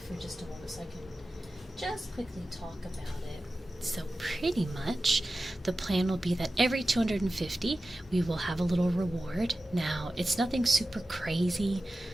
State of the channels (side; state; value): both; normal; correlation 0.94